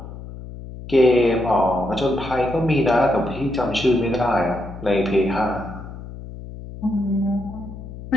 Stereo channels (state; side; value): noise; left; hum, 12 dB below the sound